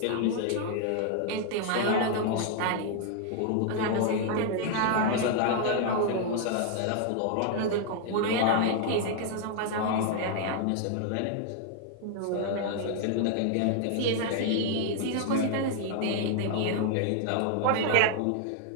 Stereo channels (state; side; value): different; both; correlation 0.00